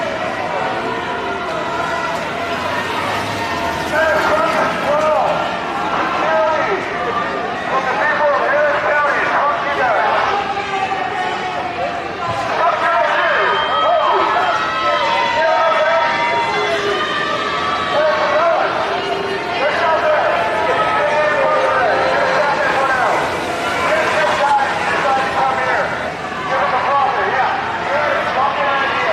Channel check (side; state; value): both; identical; correlation 1.00